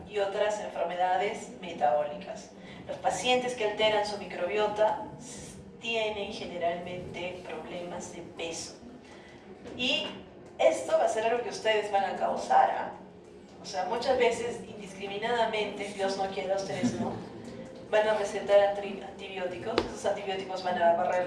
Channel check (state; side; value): identical; both; correlation 1.00